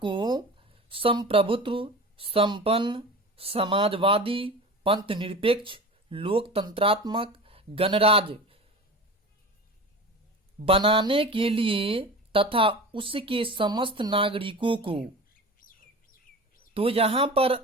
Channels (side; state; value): both; normal; correlation 0.33